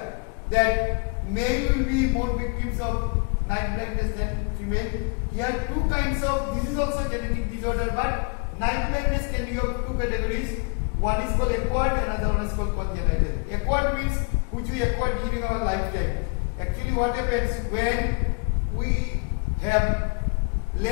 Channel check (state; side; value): quieter; right; 35.0 dB